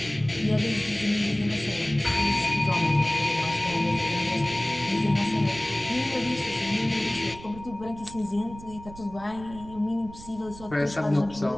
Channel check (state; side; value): noise; right; rumble, 16 dB below the sound